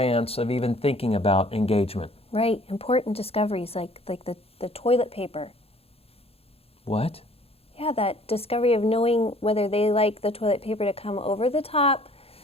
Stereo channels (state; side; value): late; right; 0.28 ms